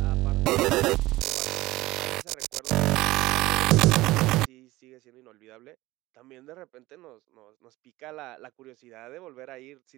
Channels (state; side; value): quieter; left; 18.5 dB